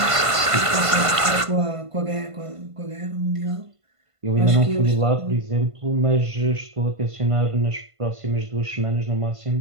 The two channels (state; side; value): late; left; 1.5 ms